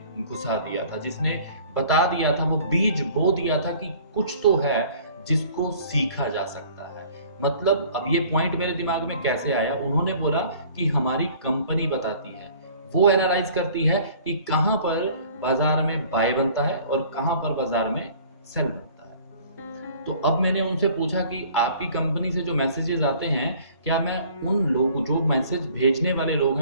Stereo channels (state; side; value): inverted; both; correlation -0.51